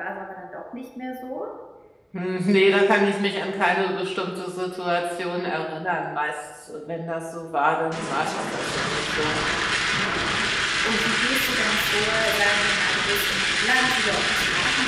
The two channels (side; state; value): both; identical; correlation 1.00